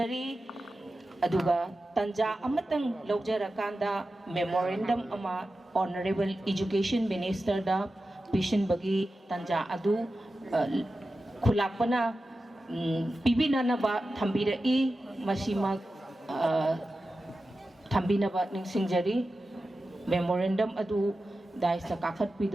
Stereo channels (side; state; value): both; normal; correlation 0.93